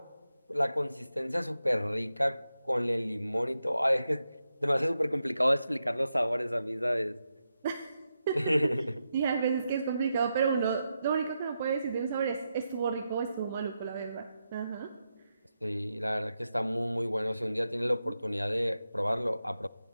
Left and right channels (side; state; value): both; inverted; correlation -0.87